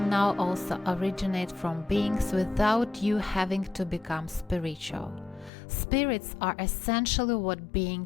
now also originate from beings without you having to become spiritual. Spirits are essentially what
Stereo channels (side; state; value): right; drops out; at 5.5 s